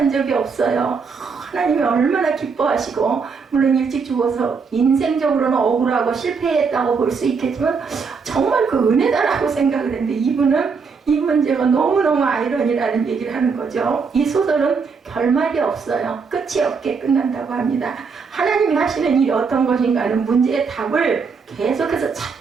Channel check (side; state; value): left; quieter; 5.3 dB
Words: 적이 없어요. 하나님이 얼마나 기뻐하시고, 물론 일찍 죽어서 인생적으로는 억울하고 실패했다고 볼 수 있겠지만 정말 그 은혜다라고 생각을 했는데, 이분은 이 문제가 너무너무 아이러니라는 얘기를 하는 거죠. 이 소설은 결말이 없어요. 끝이 없게 끝난다고 합니다. 하나님이 하시는 일이 어떤 것인가 하는 문제의 답을 계속해서